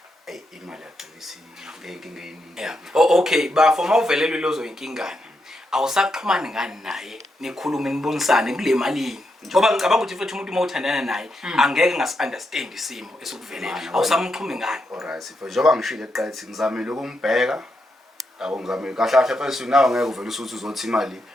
imali yagcina ngenkinga eningi okay bafo mawuvelelwe lozo inkingane awusaxhumani ngani naye nikhulume nibonisane kule malini ngoba ngicabanga ukuthi futhi umuntu mawuthandana naye angeke ngasi-understand isimo esikuvelela awusamxhumi ngani alright sifo njengoba ngishilo eqathi ngizamile ukumbheka yabo ngizamile kahle first nawe ngeke uvele usuthi uzothi imali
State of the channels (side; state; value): both; normal; correlation 0.83